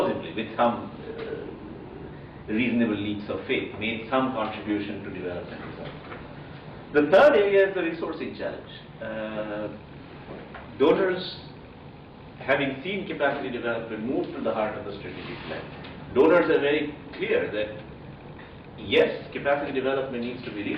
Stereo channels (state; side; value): identical; both; correlation 1.00